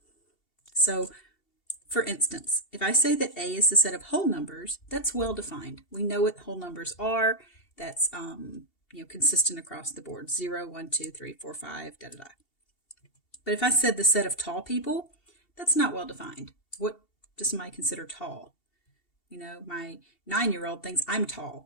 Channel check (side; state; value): right; late; 2.7 ms